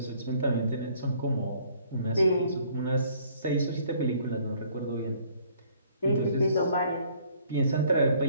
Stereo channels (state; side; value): inverted; both; correlation -0.61